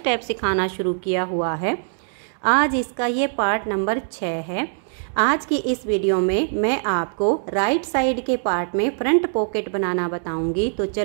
सिखाना शुरू किया हुआ है। आज इसका ये पार्ट नंबर 6 है। आज की इस वीडियो में मैं आपको राइट साइड के पार्ट में फ्रंट पॉकेट बनाना बताऊंगी। तो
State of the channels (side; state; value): left; silent; digital silence